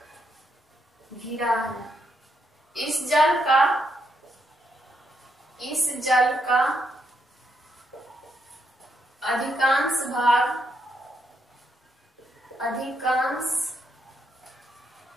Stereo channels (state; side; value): normal; both; correlation 0.78